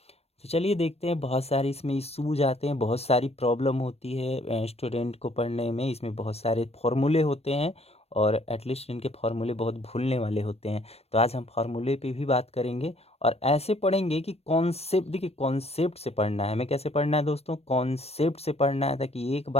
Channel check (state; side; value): late; right; 0.30 ms